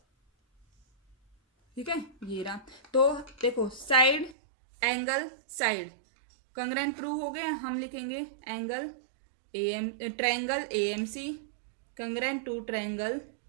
ठीक है, ये रहा। तो देखो side angle side congruent prove हो गए। हम लिखेंगे angle triangle AMC congruent to triangle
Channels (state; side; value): drops out; left; at 4.4 s